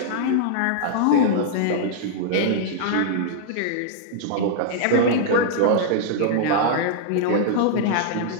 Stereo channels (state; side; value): different; both; correlation -0.01